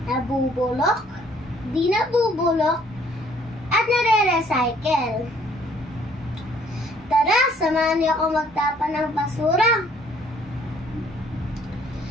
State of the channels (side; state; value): both; normal; correlation 0.61